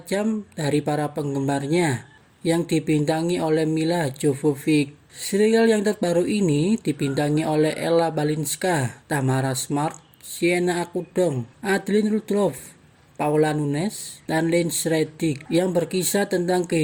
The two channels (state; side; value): identical; both; correlation 1.00